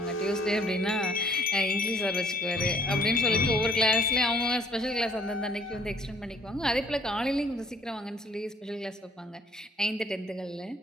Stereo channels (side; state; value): both; normal; correlation 0.57